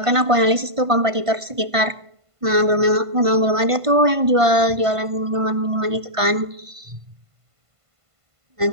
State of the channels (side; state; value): left; late; 1.5 ms